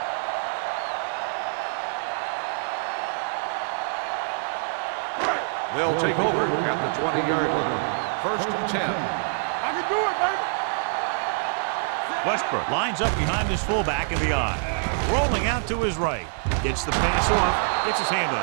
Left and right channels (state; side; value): silent; left; 61 dB below the other